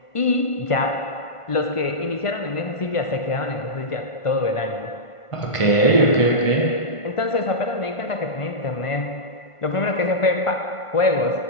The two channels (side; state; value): right; late; 1.5 ms